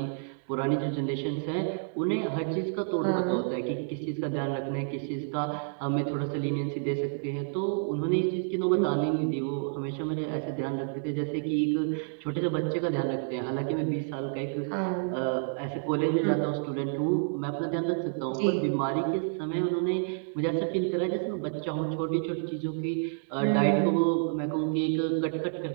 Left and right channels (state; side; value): silent; left; digital silence